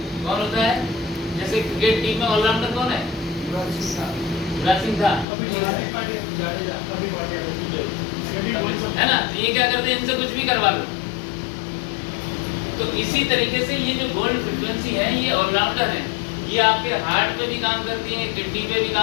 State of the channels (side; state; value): right; drops out; at 5.2 s